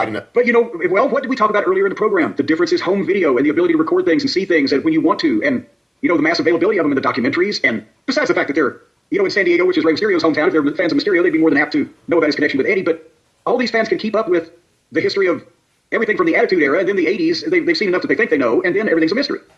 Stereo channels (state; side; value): identical; both; correlation 1.00